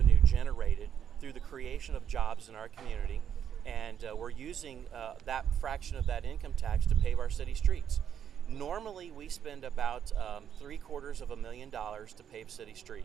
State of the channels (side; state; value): left; quieter; 8.8 dB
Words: generated through the creation of jobs in our community, and we're using that fraction of that income tax to pave our city streets. Normally we spend about $750,000 to pave city